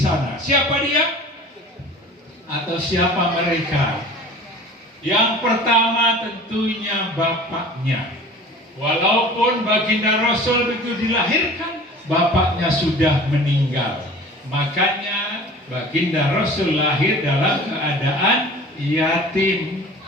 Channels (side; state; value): both; normal; correlation 0.42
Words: Siapa dia? Atau siapa mereka? Yang pertama tentunya bapaknya. Walaupun baginda Rasul begitu dilahirkan, bapaknya sudah meninggal. Makanya baginda Rasul lahir dalam keadaan yatim.